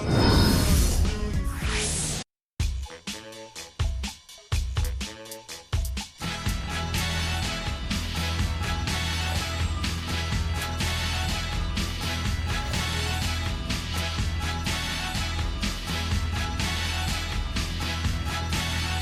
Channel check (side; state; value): both; identical; correlation 1.00